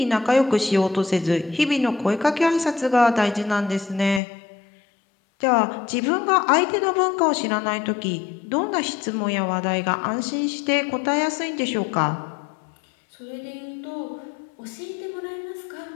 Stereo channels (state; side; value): drops out; right; at 4.2 s